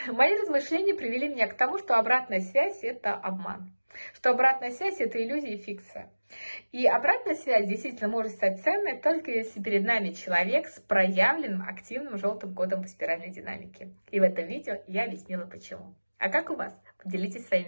мои размышления привели меня к тому, что обратная связь – это обман. Что обратная связь – это иллюзия и фикция. И обратная связь действительно может стать ценной, только если перед нами человек с проявленным активным желтым кодом по спиральной динамике. И в этом видео я объяснила почему. А как у вас? Поделитесь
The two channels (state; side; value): inverted; both; correlation -1.00